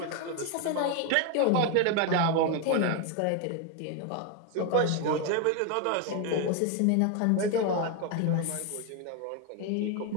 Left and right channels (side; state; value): both; different; correlation 0.01